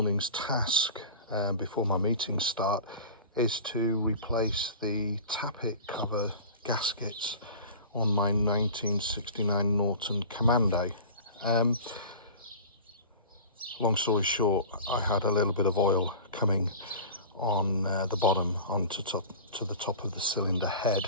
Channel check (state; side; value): inverted; both; correlation -0.37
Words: task before my meetings start is to replace the tappet cover gaskets on my 1969 Norton Commando. Long story short, I had a little bit of oil coming on the bottom onto to the top of the cylinder head,